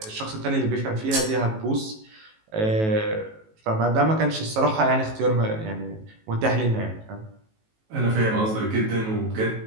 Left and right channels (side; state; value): left; late; 18 ms